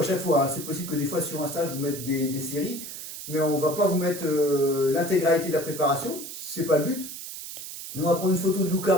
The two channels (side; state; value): right; noise; hiss, 10 dB below the sound